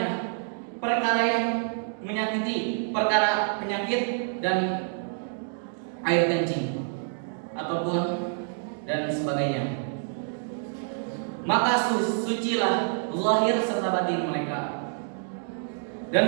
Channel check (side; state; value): left; silent; digital silence